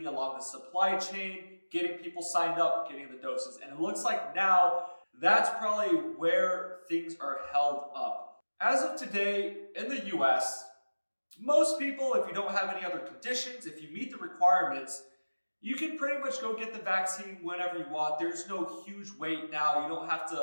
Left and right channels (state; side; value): inverted; both; correlation -1.00